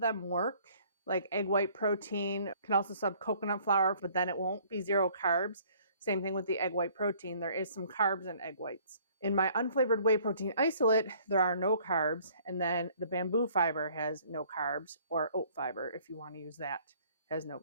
work. Like egg white protein, you can also sub coconut flour, but then it won't be 0 carbs. Same thing with the egg white protein. There is some carbs in egg whites. In my unflavored whey protein isolate, there are no carbs. And then the bamboo fiber has no carbs, or oat fiber, if you want to use that, has no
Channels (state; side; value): inverted; both; correlation -0.58